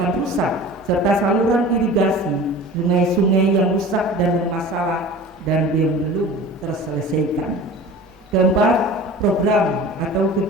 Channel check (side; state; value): both; normal; correlation 0.39